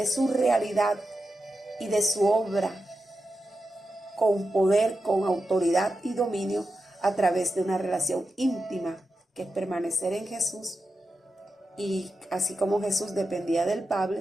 su realidad y de su obra con poder, con autoridad y dominio a través de una relación íntima que es permanecer en Jesús. Y así como Jesús dependía del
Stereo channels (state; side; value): normal; both; correlation 0.90